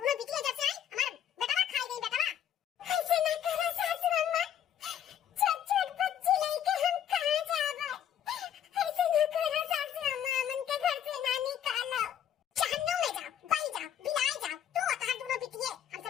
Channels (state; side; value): quieter; right; 9.9 dB